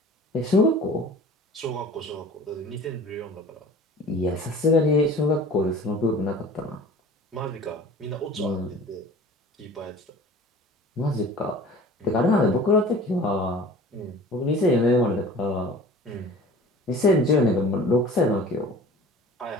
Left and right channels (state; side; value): normal; both; correlation 0.43